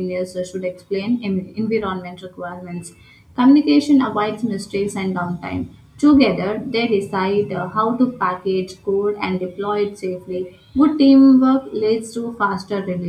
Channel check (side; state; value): both; identical; correlation 1.00